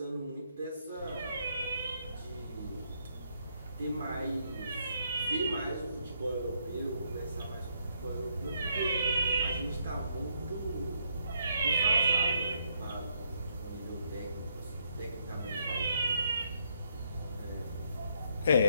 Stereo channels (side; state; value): both; inverted; correlation -0.72